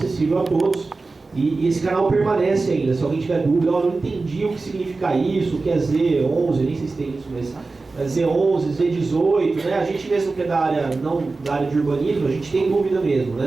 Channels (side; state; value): left; quieter; 3.7 dB